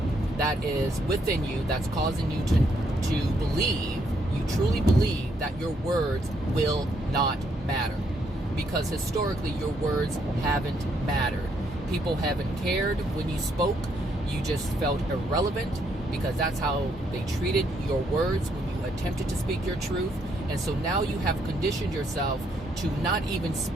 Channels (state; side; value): normal; both; correlation 0.73